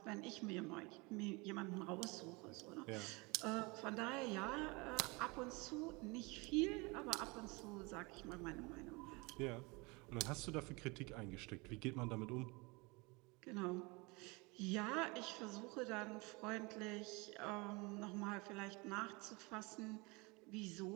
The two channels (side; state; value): left; quieter; 26.8 dB